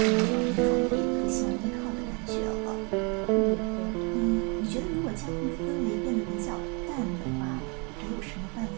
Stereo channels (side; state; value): left; quieter; 33.2 dB